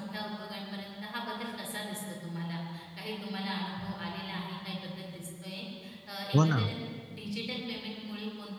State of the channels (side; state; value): both; identical; correlation 1.00